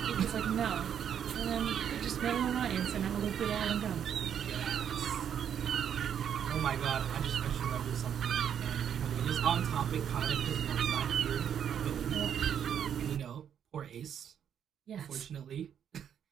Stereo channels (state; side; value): quieter; left; 8.8 dB